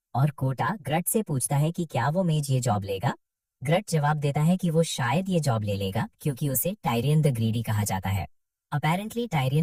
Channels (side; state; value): both; identical; correlation 1.00